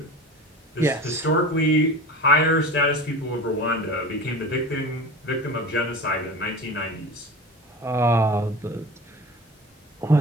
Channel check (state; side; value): normal; both; correlation 0.33